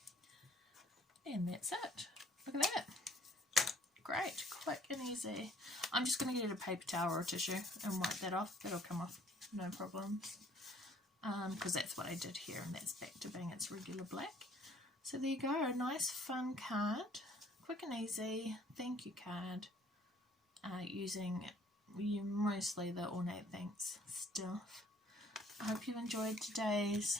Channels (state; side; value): normal; both; correlation 0.58